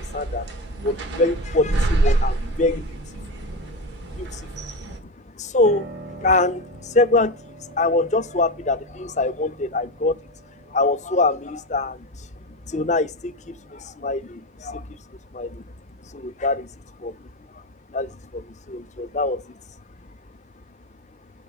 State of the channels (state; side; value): normal; both; correlation 0.18